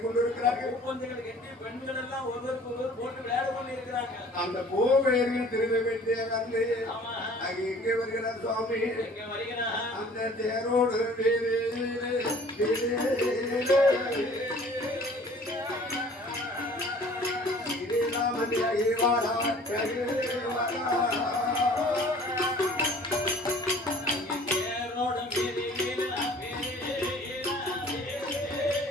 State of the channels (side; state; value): both; normal; correlation 0.50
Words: இருக்கிறார்கள். பெண்கள் எல்லாம் ஒருவருக்கு ஒருவர் போட்டு விளையாடி கொண்டு இருக்கிறாங்க. அந்த கோவேர்கள் திரும்ப வேண்டிய வந்து எங்கே வருகிறார் சுவாமி? அந்த தேரோடு